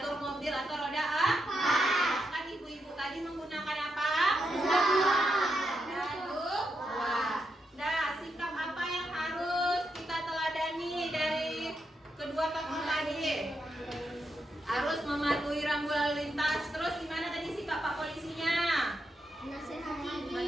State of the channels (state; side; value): normal; both; correlation 0.83